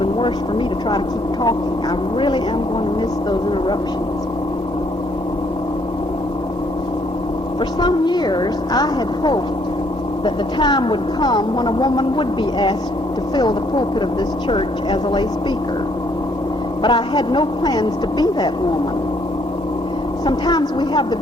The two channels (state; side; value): normal; both; correlation 0.67